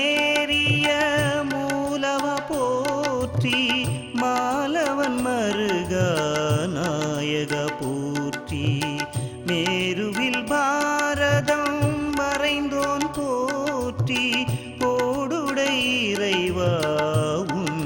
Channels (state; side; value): identical; both; correlation 1.00